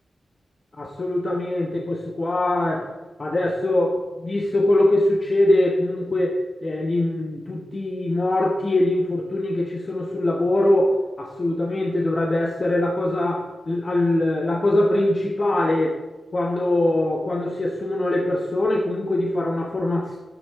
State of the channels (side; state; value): both; normal; correlation 0.93